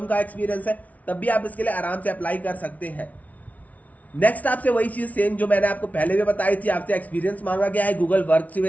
का एक्सपीरियंस है, तब भी आप इसके लिए आराम से अप्लाई कर सकते हैं। नेक्स्ट आपसे वही चीज़ सेम जो मैंने आपको पहले भी बताई थी, आपसे एक्सपीरियंस मांगा गया है गूगल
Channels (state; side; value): late; right; 0.071 ms